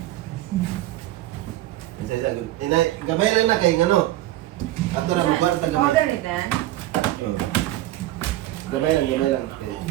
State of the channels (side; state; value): left; quieter; 15.4 dB